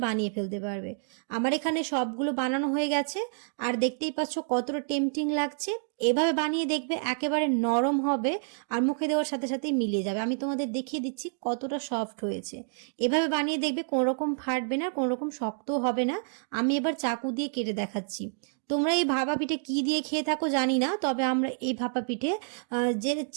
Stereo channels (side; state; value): left; silent; digital silence